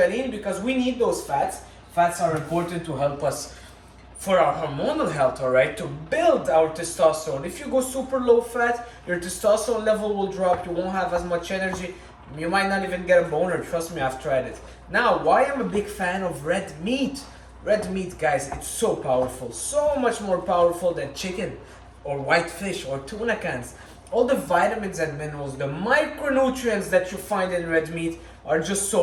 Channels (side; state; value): both; identical; correlation 1.00